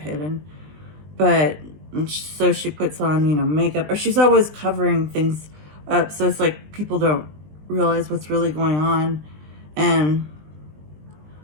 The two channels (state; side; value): late; left; 20 ms